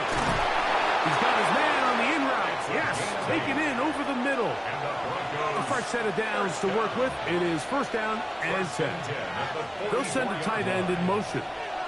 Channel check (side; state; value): both; identical; correlation 1.00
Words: got his man on the in route. Yes, taken in over the middle. A fresh set of downs to work with. It is 1st down and 10. They'll send a tight end in motion.